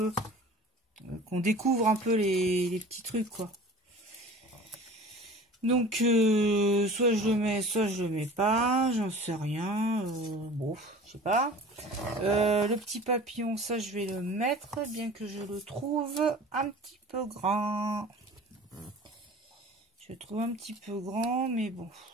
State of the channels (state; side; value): normal; both; correlation 0.42